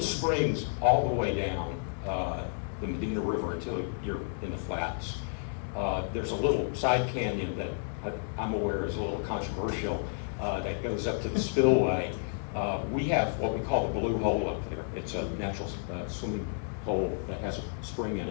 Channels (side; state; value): right; silent; digital silence